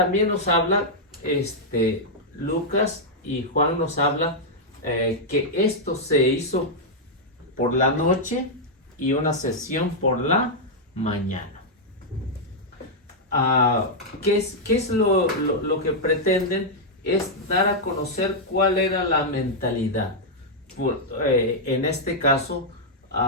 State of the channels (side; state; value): both; normal; correlation -0.05